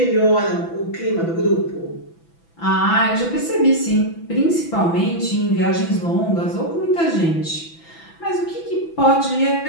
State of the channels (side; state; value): right; late; 6.0 ms